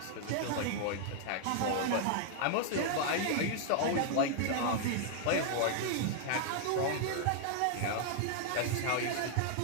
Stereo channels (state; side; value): different; both; correlation 0.00